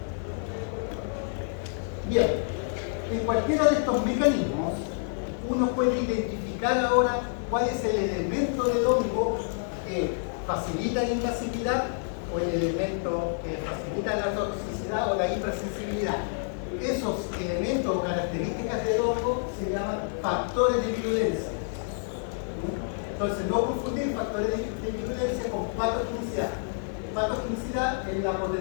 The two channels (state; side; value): silent; right; 59 dB below the other